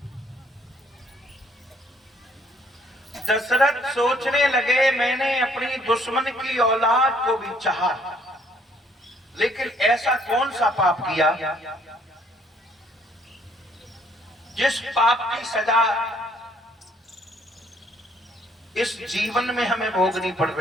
दशरथ सोचने लगे मैंने अपनी दुश्मन की औलाद को भी चाहा, लेकिन ऐसा कौन सा पाप किया जिस पाप की सजा इस जीवन में हमें भोगनी पड़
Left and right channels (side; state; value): both; normal; correlation 0.64